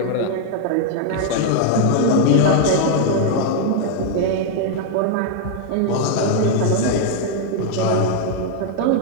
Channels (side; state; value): both; different; correlation 0.00